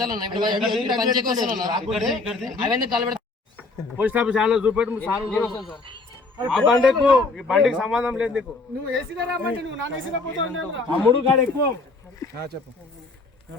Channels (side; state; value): right; quieter; 3.6 dB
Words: పోస్ట్ ఆఫీస్ చూపెట్టు ఆ బండికు ఈ బండికి సంబంధం లేదు నీకు. నువ్వు ఏసీలో రామంటే నువ్వు నాన్ ఏసీలో పోతావు. అమ్ముడు కాడ ఎక్కువ చెప్పు.